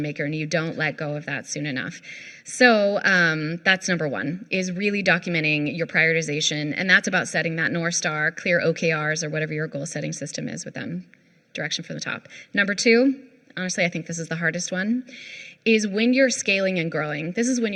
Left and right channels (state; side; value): identical; both; correlation 1.00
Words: maker, and you don't let go of that soon enough. So that's number one, is really documenting your prioritization, and that's about setting that North Star, clear OKRs, or whatever your goal setting system is with them, direction from the top. Number two, honestly, I think this is the hardest one, is when you're scaling and growing. This is when